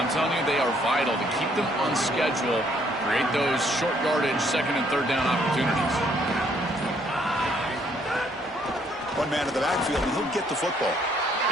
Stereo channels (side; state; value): both; normal; correlation 0.67